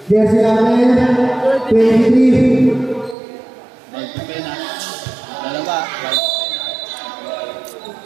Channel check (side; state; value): left; drops out; at 3.2 s